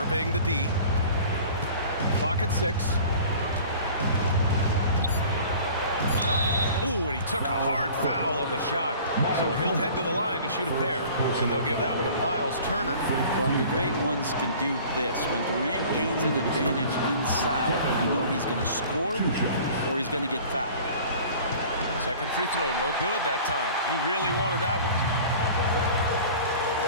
the D. Clock at 6. Ooh, and he took a hard foul on the shot. So he'll head to the line to shoot a pair. And they'll give that one to Miles Turner. Well, the great ones can do this. When Durant gains an advantage inside, you know he's going to score or he's going to get fouled. Second free throw, no good that time. He really wanted that one.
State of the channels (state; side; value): inverted; both; correlation -0.45